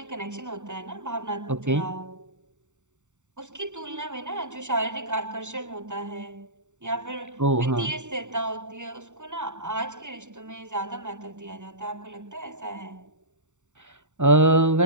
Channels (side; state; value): left; late; 0.84 ms